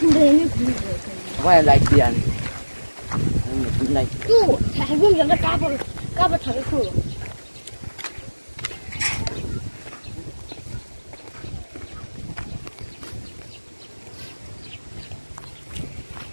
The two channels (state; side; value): inverted; both; correlation -1.00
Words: không đến Quay lại tiền. Một này. 또 해보면 까봐 잘했어.